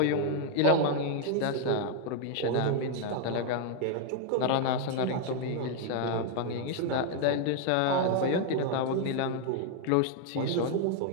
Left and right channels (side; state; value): both; different; correlation 0.00